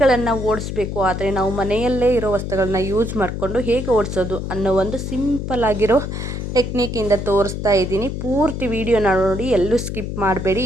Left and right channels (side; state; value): left; noise; hum, 5 dB below the sound